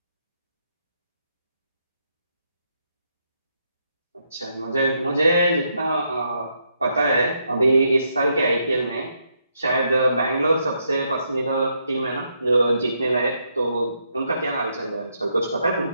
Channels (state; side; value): inverted; both; correlation -0.78